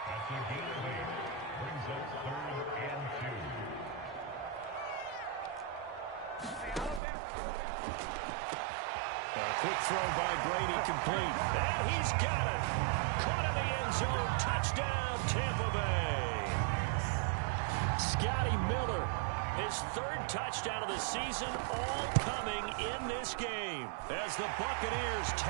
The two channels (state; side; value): drops out; left; at 7.0 s